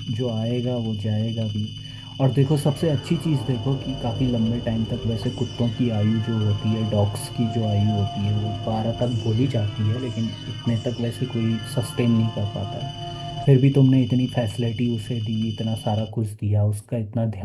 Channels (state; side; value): identical; both; correlation 1.00